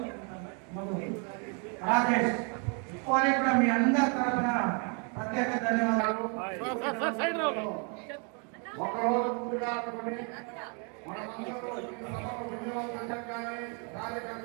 రాకేష్ వారికి కూడా మీ అందరి తరఫున ప్రత్యేక ధన్యవాదాలు. ఒకరోజు ముందుగా అనుకుని మనమందరూ ఈ సభకు వినియోగం కానీ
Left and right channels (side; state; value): left; quieter; 37.3 dB